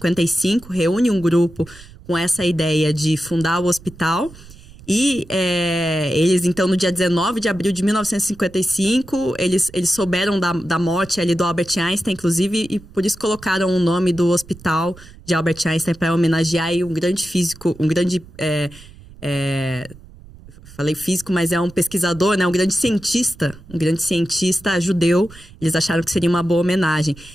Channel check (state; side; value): noise; right; rumble, 20 dB below the sound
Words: reúne um grupo com essa ideia de fundar o hospital. E eles, então, no dia 19 de abril de 1955, eles souberam da morte ali do Albert Einstein, inclusive, e por isso colocaram o nome do hospital de Albert Einstein para homenagear aí um grande físico, um grande... falei físico, mas é um pesquisador, né? Um grande cientista judeu. Eles acharam que seria uma boa homenagem.